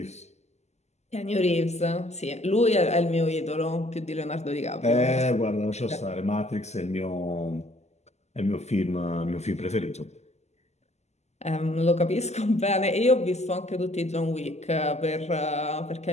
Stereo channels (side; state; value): right; late; 0.33 ms